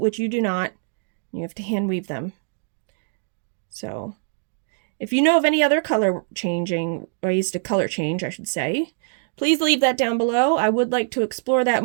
you do not. You have to hand weave them. So if you know of any other ways to color change, I should say, please leave that down below. I would like to explore that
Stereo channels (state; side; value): silent; left; digital silence